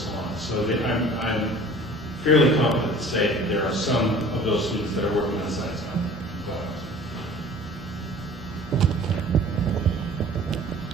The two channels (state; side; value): normal; both; correlation 0.46